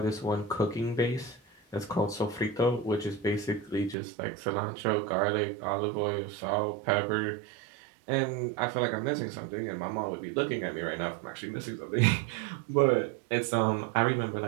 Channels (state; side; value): drops out; left; at 4.0 s